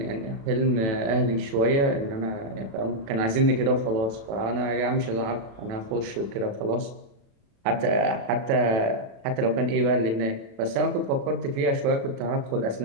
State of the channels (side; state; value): left; late; 36 ms